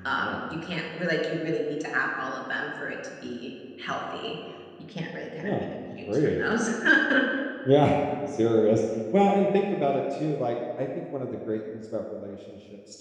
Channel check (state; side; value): identical; both; correlation 1.00